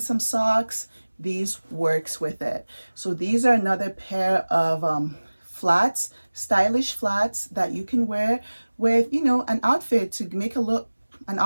some socks, these works with it. So these are another pair of flats, stylish flats that you can wear with, you know, an outfit to make an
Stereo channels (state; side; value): inverted; both; correlation -1.00